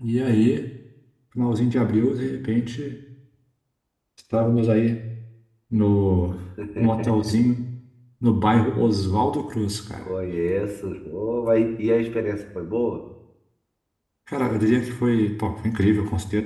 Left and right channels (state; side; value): identical; both; correlation 1.00